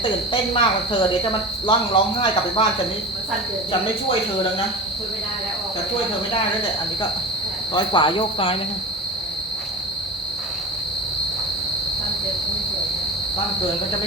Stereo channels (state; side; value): normal; both; correlation 0.30